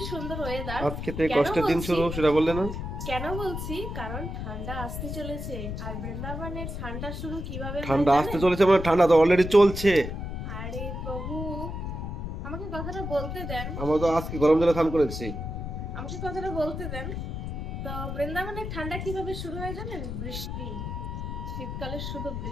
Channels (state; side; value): noise; left; rumble, 5 dB below the sound